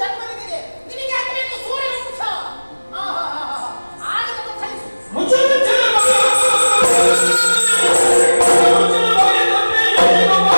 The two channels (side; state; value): both; inverted; correlation -1.00